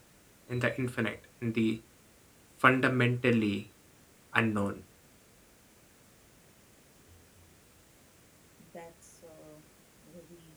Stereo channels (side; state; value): both; identical; correlation 1.00